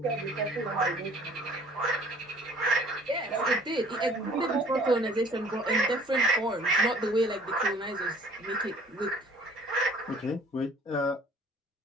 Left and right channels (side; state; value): both; normal; correlation 0.53